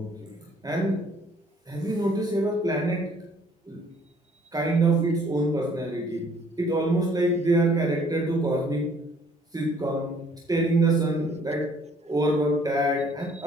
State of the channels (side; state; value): both; normal; correlation 0.59